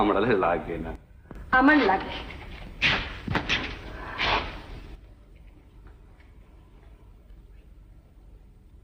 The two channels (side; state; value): both; identical; correlation 1.00